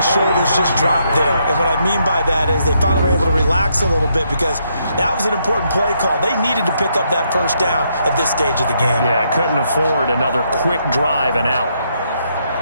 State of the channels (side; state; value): both; inverted; correlation -0.76